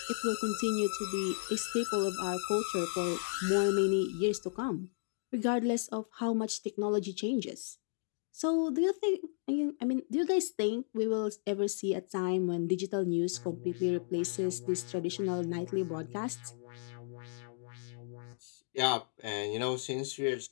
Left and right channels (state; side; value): silent; right; digital silence